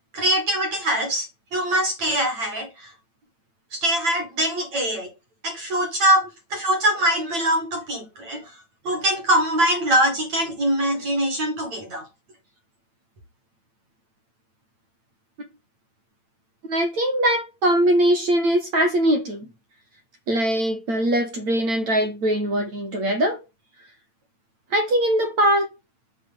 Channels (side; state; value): left; late; 8.9 ms